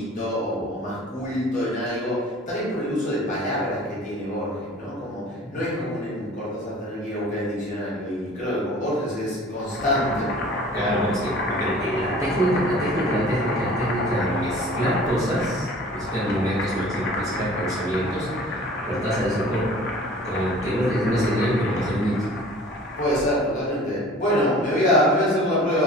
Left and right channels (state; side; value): normal; both; correlation 0.46